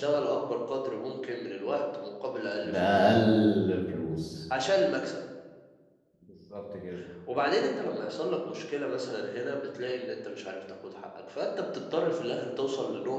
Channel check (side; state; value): both; identical; correlation 1.00